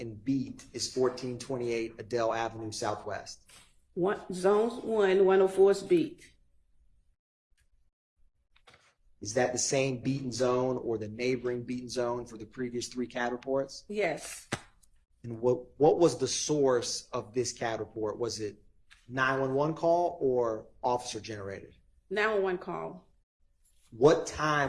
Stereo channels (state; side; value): identical; both; correlation 1.00